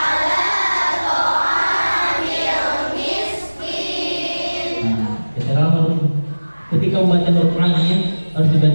Ketika membaca huruf ain harus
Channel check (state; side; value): inverted; both; correlation -1.00